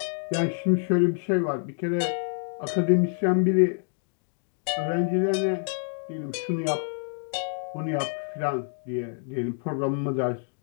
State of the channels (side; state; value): right; silent; 60 dB below the other